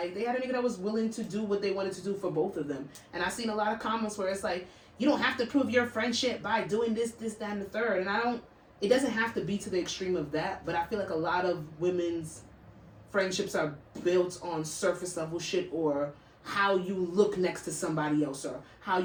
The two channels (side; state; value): both; identical; correlation 1.00